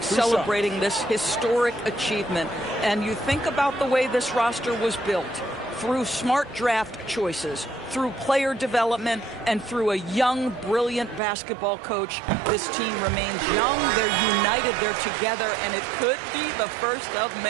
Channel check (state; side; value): drops out; left; at 11.2 s